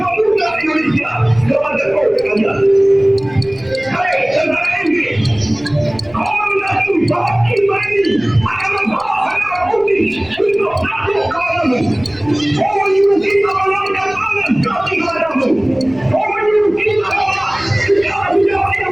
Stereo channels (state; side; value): noise; right; rumble, 24 dB below the sound